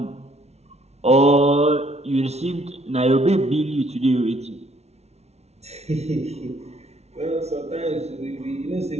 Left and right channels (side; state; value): left; late; 0.31 ms